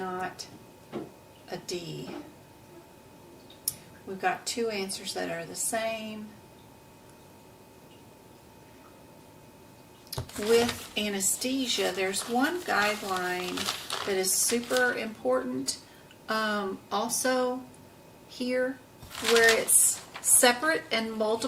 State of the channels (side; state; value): both; identical; correlation 1.00